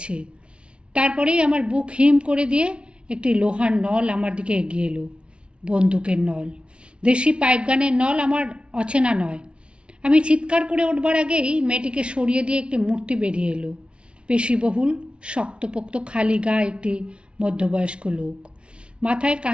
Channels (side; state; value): left; late; 0.058 ms